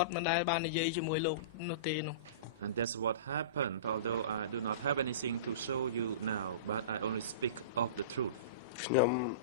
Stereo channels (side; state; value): both; inverted; correlation -0.32